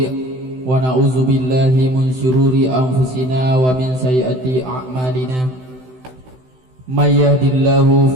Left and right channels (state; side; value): late; left; 16 ms